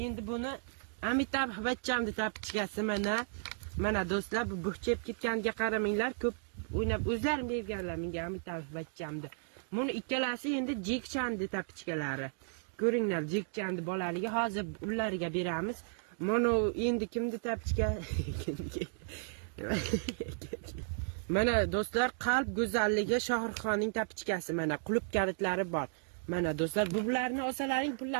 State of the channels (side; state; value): left; silent; digital silence